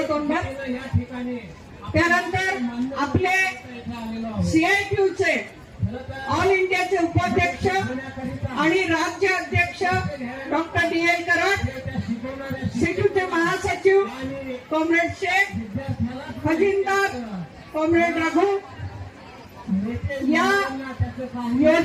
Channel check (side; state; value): both; identical; correlation 1.00